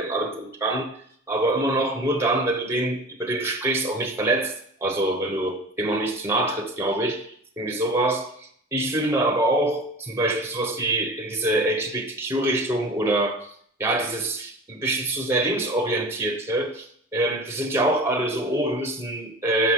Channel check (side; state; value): both; normal; correlation 0.36